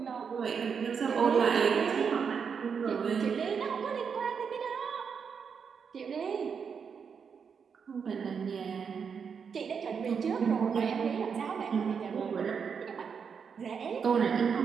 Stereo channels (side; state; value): left; quieter; 6.4 dB